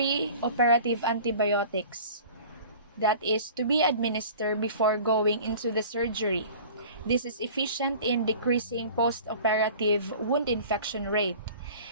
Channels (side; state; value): both; inverted; correlation -0.43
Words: antibiotics that is to be administered before going into the surgery. This is efficient in decreasing post-operative wound infection rate.